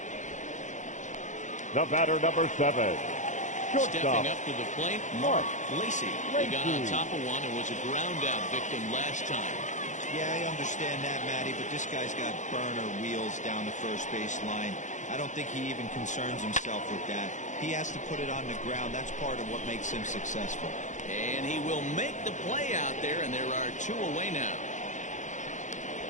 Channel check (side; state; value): right; late; 0.35 ms